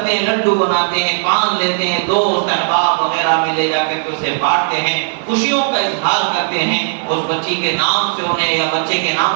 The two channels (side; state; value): left; silent; digital silence